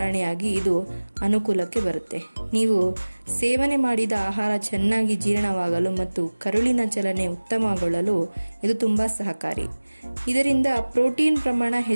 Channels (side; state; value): both; inverted; correlation -1.00